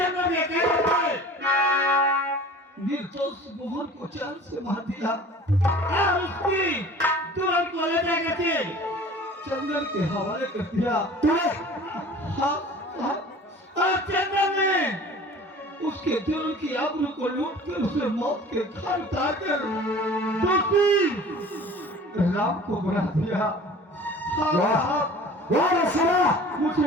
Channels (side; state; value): both; normal; correlation 0.44